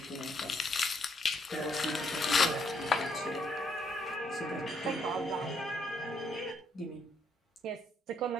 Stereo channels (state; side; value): normal; both; correlation 0.73